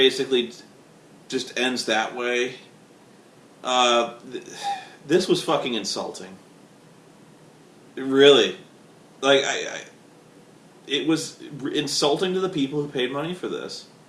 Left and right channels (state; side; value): identical; both; correlation 1.00